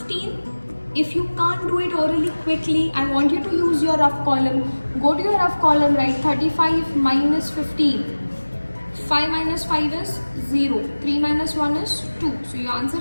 If you can't do it orally quickly, I want you to use your rough column. Go to your rough column, write 35 minus 15. 5 minus 5 is 0. 3 minus 1 is 2. So your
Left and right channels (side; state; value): both; inverted; correlation -1.00